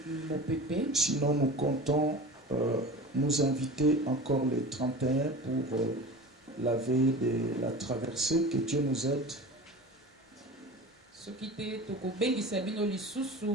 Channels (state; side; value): normal; both; correlation 0.35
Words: mopepe. Sinon, nous comptons nous inviter encore le 31 pour la veille de la traversée. Que Dieu nous aide. Soki te tokobengisa bino